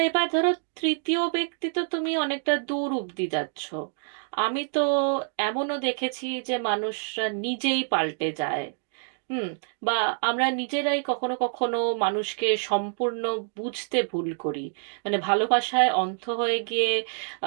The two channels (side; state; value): left; silent; digital silence